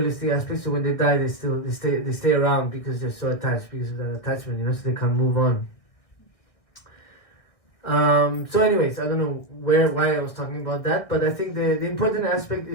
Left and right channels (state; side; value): late; right; 1.6 ms